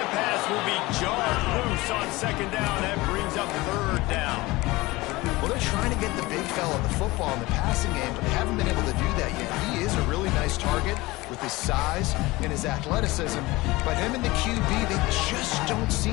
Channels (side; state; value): right; quieter; 20.8 dB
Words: pass will be jarred loose on 2nd down. That brings up 3rd down. Well, they're trying to get the big fella the football in the passing game, but they haven't been able to do that yet. He is a really nice target with his size and his athleticism, but him and the QB, they just don't